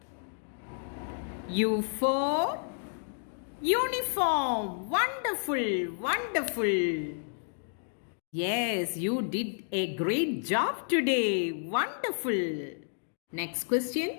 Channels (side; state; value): right; silent; digital silence